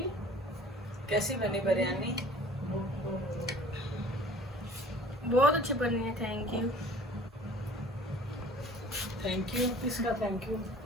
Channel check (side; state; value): both; normal; correlation 0.48